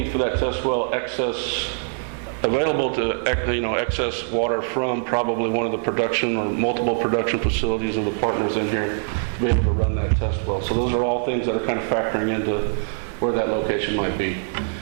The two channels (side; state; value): left; silent; 59 dB below the other